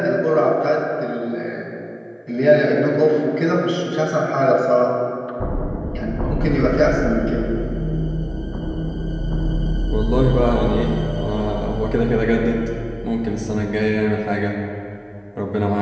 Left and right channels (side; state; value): both; identical; correlation 1.00